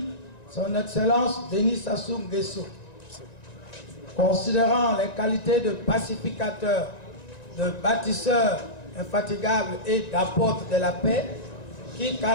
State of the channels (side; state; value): right; late; 1.9 ms